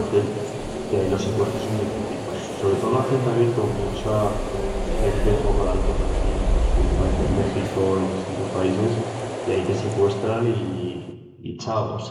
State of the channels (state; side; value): identical; both; correlation 1.00